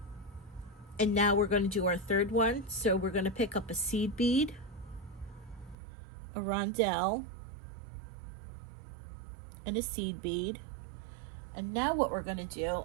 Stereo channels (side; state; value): left; drops out; at 5.8 s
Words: And now we're going to do our third one. So we're going to pick up a seed bead, a rondelle, and a seed bead. And now what we're going to do,